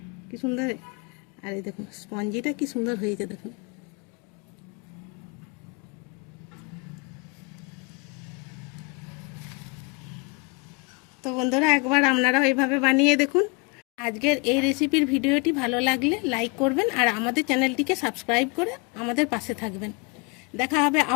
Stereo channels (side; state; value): right; quieter; 30.0 dB